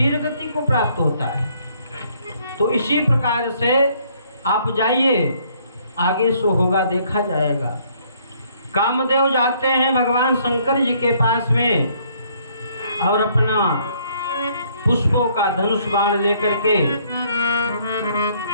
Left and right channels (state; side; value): inverted; both; correlation -0.65